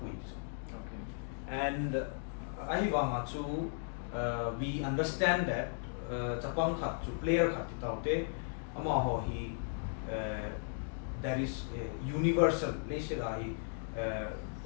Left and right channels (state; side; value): silent; right; digital silence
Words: And we understand that player there is a universal,